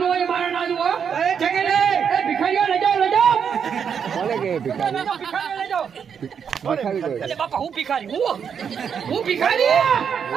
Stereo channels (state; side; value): quieter; left; 7.2 dB